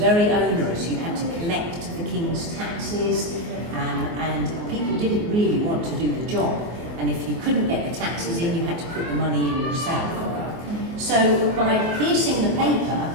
onerous. You had to collect the King's taxes, and people didn't really want to do the job. And if you couldn't get the taxes in, you had to put the money in yourself. So by piercing the paper,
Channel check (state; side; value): late; left; 24 ms